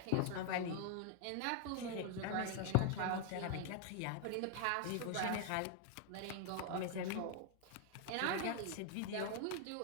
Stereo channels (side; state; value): both; different; correlation 0.00